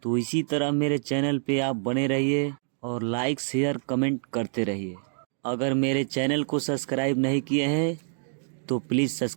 तो इसी तरह मेरे चैनल पे आप बने रहिए और लाइक शेयर कमेंट करते रहिए। अगर मेरे चैनल को सब्सक्राइब नहीं किए हैं तो प्लीज़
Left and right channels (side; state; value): left; silent; digital silence